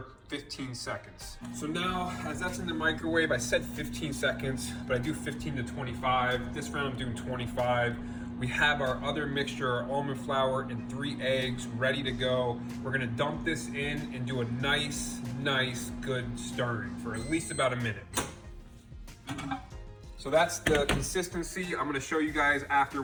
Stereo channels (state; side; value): identical; both; correlation 1.00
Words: 15 seconds. So now, as that's in the microwave, I said 15 seconds, but I do 15 to 25. This round I'm doing 25. We have our other mixture, our almond flour and 3 eggs ready to go. We're gonna dump this in and do a nice, good stirring for at least about a minute. So that's the consistency. I'm gonna show you guys after